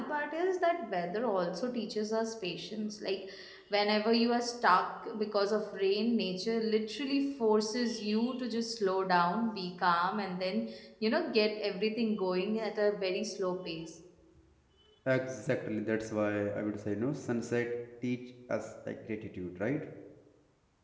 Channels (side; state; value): both; identical; correlation 1.00